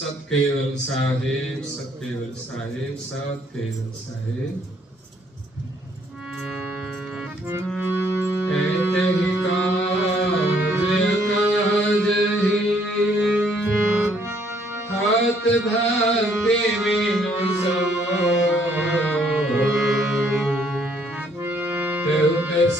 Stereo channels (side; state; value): both; normal; correlation 0.66